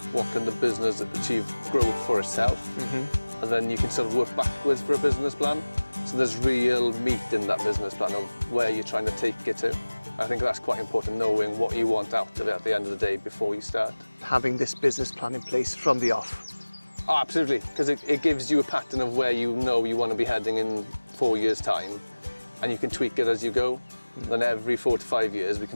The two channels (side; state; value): both; inverted; correlation -1.00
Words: what can the business achieve growth for itself, and then you can sort of work backwards for a business plan. So there's real meat in that business plan of where you're trying to take it to. I think that's quite important, knowing what you want out of it at the end of the day before you start. Having this business plan in place from the off. Oh, absolutely, because it gives you a pattern of where you know you want to be heading in 4 years' time, and you can tweak it as you go. Then every 4 to 5 years we